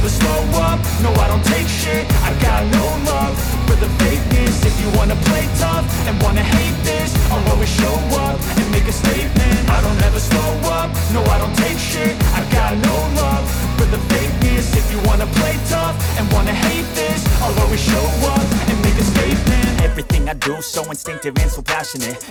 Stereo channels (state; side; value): identical; both; correlation 1.00